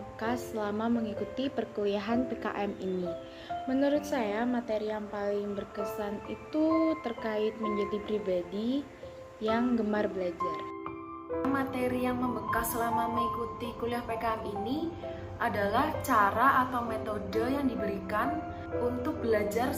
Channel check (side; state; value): both; identical; correlation 1.00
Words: selama mengikuti perkuliahan PKM ini? Menurut saya, materi yang paling berkesan itu terkait menjadi pribadi yang gemar belajar. Materi yang membekas selama mengikuti kuliah PKM ini adalah cara atau metode yang diberikan untuk belajar